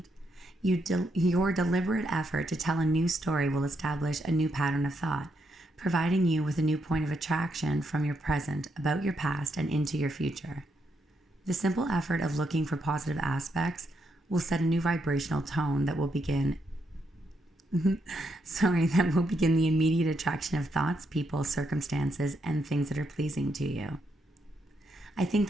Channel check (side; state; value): both; normal; correlation 0.79